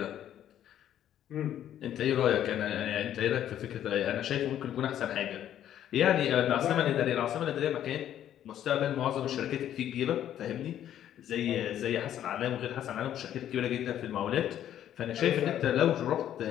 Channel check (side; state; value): right; quieter; 11.0 dB